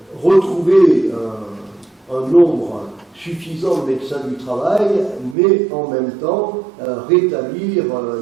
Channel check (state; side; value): drops out; left; at 5.4 s